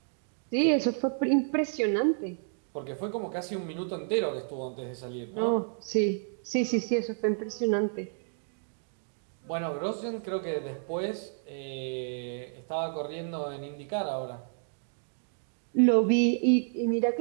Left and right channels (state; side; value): silent; left; digital silence